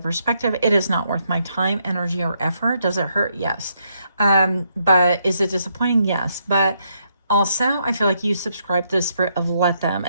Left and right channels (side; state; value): both; inverted; correlation -0.76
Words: It is not worth my time, energy, or effort. Does it hurt? Yes. But is it disappointing? Yes. But also, I feel like you subscribe to the spirit of let them.